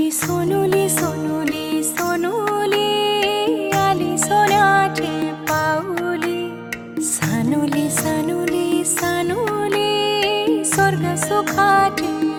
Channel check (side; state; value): both; identical; correlation 1.00